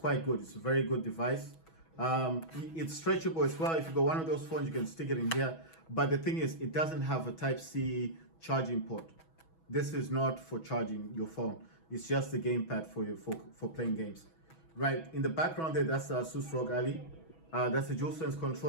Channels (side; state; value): right; late; 6.2 ms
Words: good. It's a very good device. It's stretchable as well. If you got one of those phones, you can stick it in here. But the thing is, it doesn't have a Type C charging port. This is not for charging your phone. It's just the gamepad for playing games. Right, in the background there, that's ASUS ROG Ally. That's a DualSense